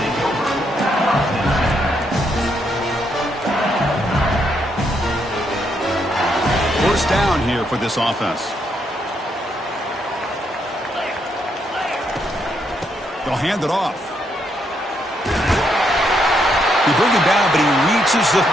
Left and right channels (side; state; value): both; normal; correlation 0.76